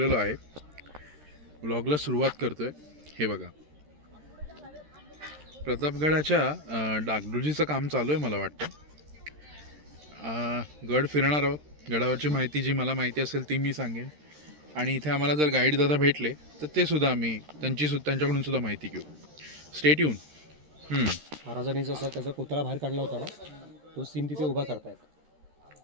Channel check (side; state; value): left; late; 13 ms